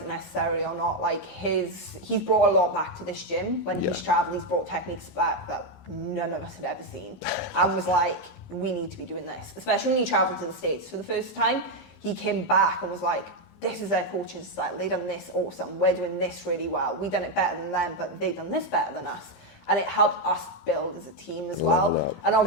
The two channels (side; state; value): right; late; 15 ms